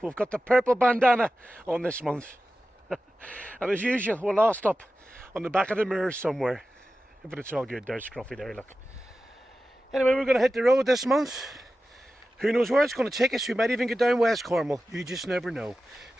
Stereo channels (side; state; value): both; normal; correlation 0.94